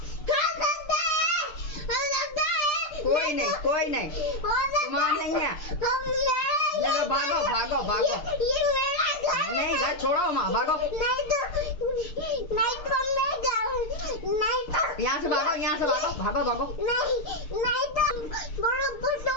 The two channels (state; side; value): late; right; 6.7 ms